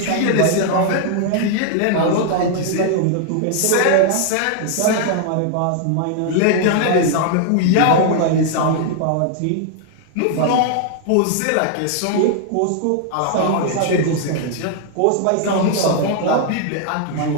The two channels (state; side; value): different; both; correlation 0.00